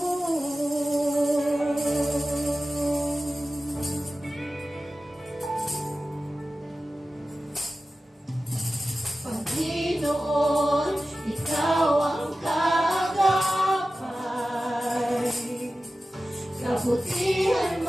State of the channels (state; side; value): normal; both; correlation 0.95